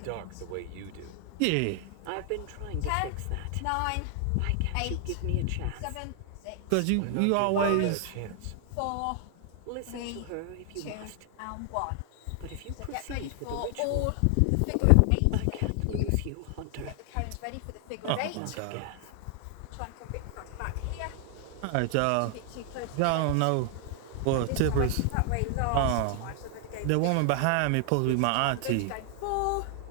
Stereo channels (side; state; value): both; different; correlation 0.00